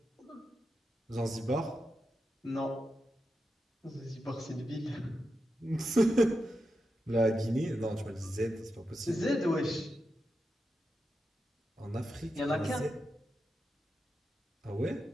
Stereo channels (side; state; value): both; normal; correlation 0.88